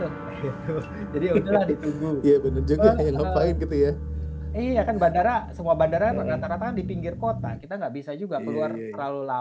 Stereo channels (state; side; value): identical; both; correlation 1.00